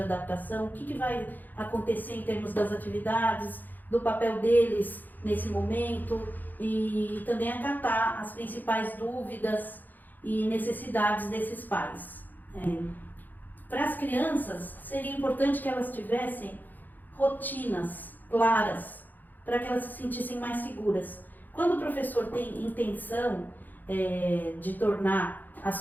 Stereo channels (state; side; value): late; right; 0.086 ms